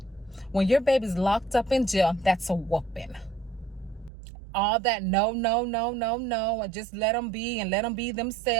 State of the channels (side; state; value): left; drops out; at 4.1 s